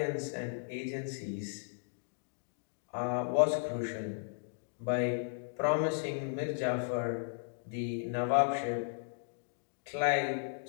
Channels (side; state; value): right; silent; digital silence